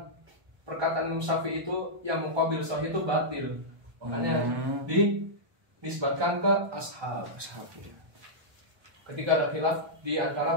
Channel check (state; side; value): late; left; 1.2 ms